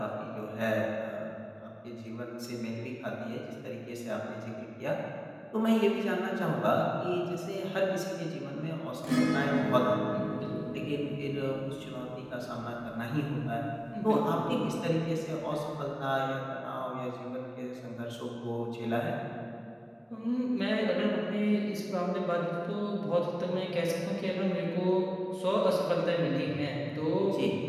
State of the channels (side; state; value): both; identical; correlation 1.00